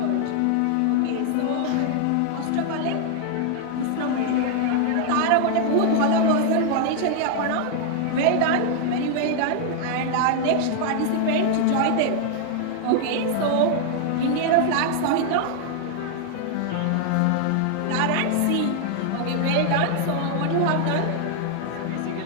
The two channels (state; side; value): different; both; correlation 0.00